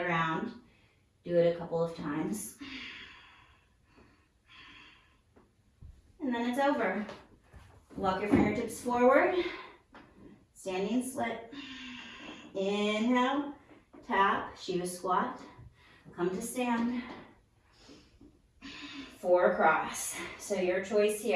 Do it a couple of times. And then it's over. Walk your fingertips forward. Standing split. Inhale, tap, Shiva squat. Come to stand. 4 across. So your choice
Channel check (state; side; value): identical; both; correlation 1.00